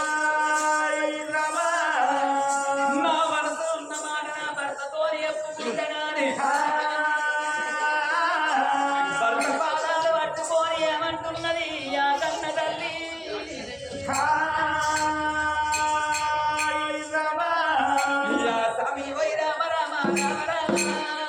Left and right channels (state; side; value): identical; both; correlation 1.00